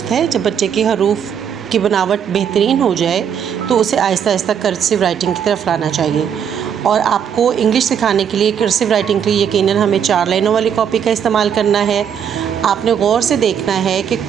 है। जब बच्चे की हरूफ की बनावट बेहतरीन हो जाए तो उसे आहिस्ता आहिस्ता कर्सिव राइटिंग की तरफ लाना चाहिए। और आपको इंग्लिश सिखाने के लिए कर्सिव राइटिंग के लिए यकीनन हमें 4 लाइनों वाली कॉपी का इस्तेमाल करना है। आपने गौर से देखना है कि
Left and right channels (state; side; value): quieter; left; 8.2 dB